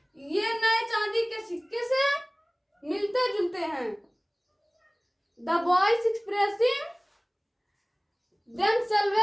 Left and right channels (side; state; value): both; identical; correlation 1.00